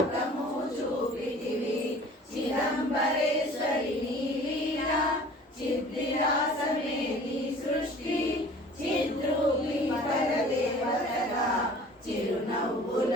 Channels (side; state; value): both; normal; correlation 0.47